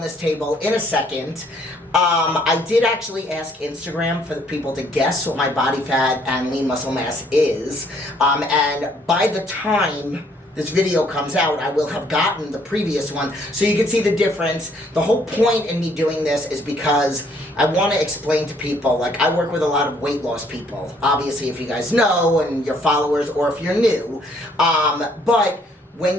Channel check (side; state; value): both; normal; correlation 0.64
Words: table in a second. I did actually ask Instagram for the people to guess what my body fat and lean muscle mass is, and by the time this video comes out, I will have gotten the previous one, so you can see the difference. The whole point in me doing this is because I want to explain to people, like I work with a lot of weight loss people, obviously if you guys know and your followers or if you're new, but